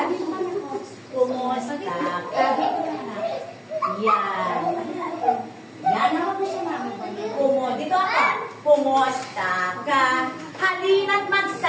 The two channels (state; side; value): identical; both; correlation 1.00